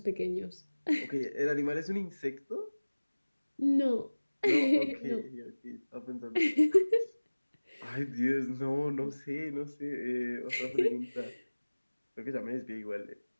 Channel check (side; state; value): both; inverted; correlation -1.00